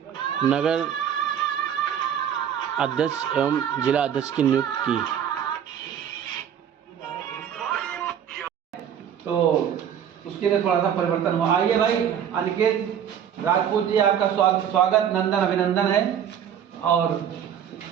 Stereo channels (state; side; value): quieter; left; 9.0 dB